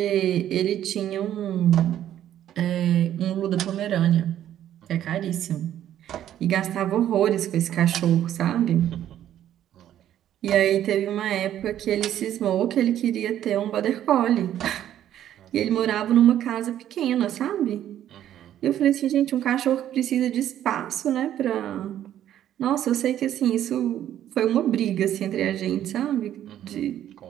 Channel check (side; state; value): left; quieter; 11.4 dB